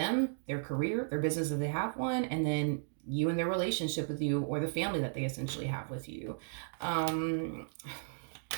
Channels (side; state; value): left; silent; digital silence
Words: their career, their business if they have one, and then you and their relationship with you, or the family that they essentially have with you. Tell